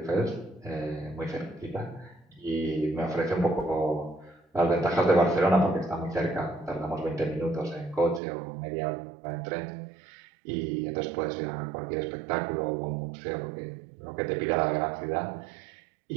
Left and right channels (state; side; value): drops out; left; at 8.2 s